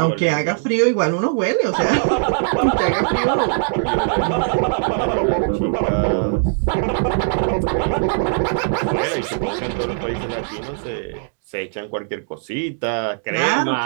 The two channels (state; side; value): silent; left; digital silence